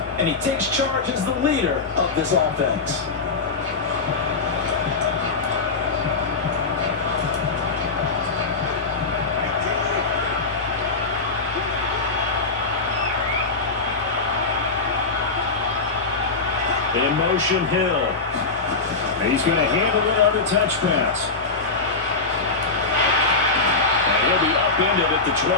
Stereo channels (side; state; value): right; quieter; 4.0 dB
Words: and he takes charge as the leader of this offense. In motion, Hill. He's going to handle it on the touch pass. And he'll be upended at the